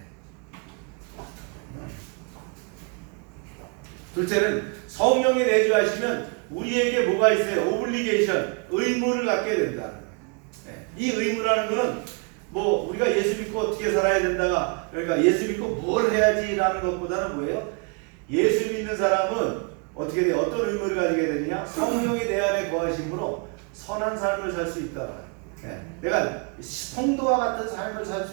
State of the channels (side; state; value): left; quieter; 35.3 dB